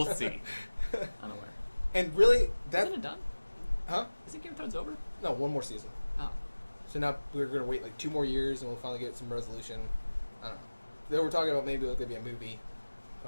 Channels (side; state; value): both; inverted; correlation -1.00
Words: see. Unaware. And really, Isn't it done? huh? Isn't Game of Thrones over? No, one more season. Oh. So now we're gonna wait like 2 more years, and we'll finally get some resolution. I don't know. They were talking about maybe it could be a movie,